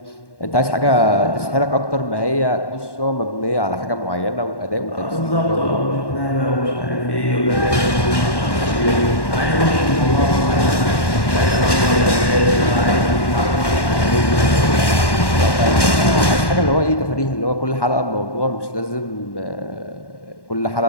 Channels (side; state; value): right; late; 1.1 ms